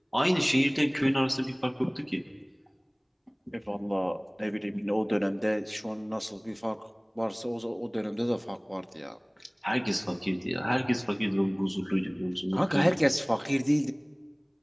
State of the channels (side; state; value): both; identical; correlation 1.00